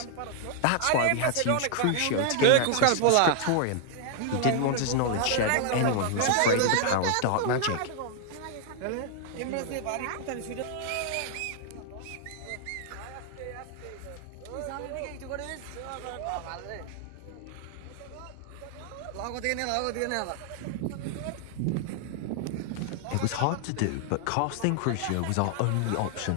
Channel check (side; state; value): both; different; correlation 0.00